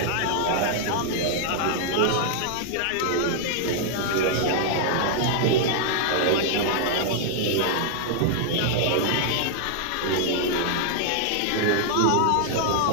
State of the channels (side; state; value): both; different; correlation -0.01